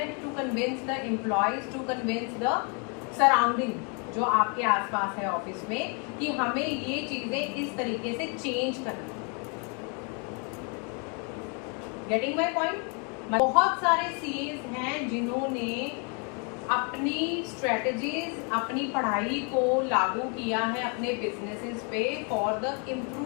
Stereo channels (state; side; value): quieter; right; 36.5 dB